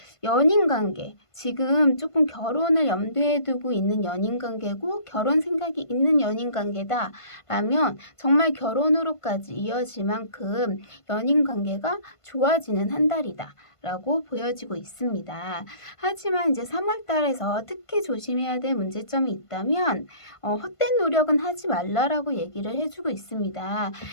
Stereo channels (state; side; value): late; right; 1.5 ms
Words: 연인 관계, 지금 조금 결혼을 염두에 두고 있는 연인 관계고 결혼 생각이 있는 연인 관계다라면 정말 결혼으로까지 이어질 만큼 연인 관계가 좋아지는 한 달이다 라고 보여지고 있습니다. 하지만 이제 3월 달에서 특히 조심해야 될 문제점이 있다면 헛된 노력은 하지 말라라고 얘기를 해주고 있습니다.